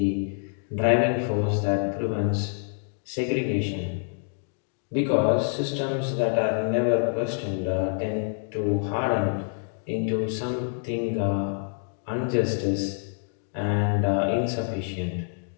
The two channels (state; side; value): silent; right; digital silence